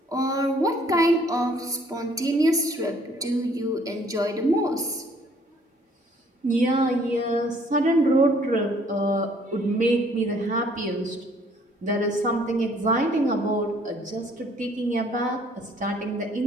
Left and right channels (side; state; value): both; normal; correlation 0.61